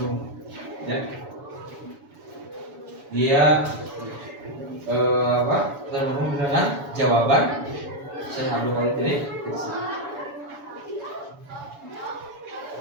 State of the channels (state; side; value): late; left; 7.0 ms